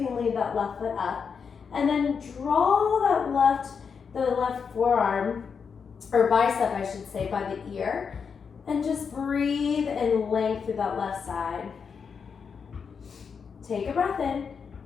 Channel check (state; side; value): quieter; right; 6.1 dB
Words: leave that left foot up. And then draw the left forearm, or bicep I should say, by the ear. And just breathe and length through that left side. Take a breath in,